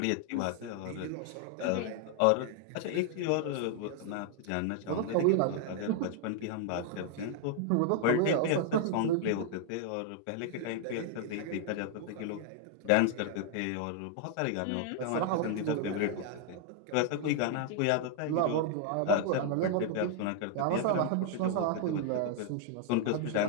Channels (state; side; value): different; both; correlation 0.00